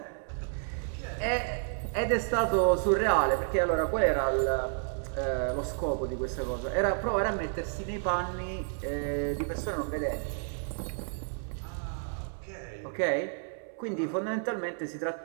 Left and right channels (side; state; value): left; silent; 57 dB below the other